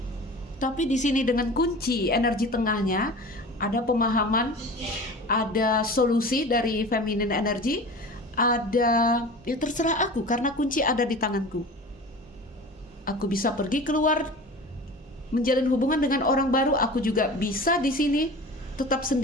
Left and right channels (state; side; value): normal; both; correlation 0.37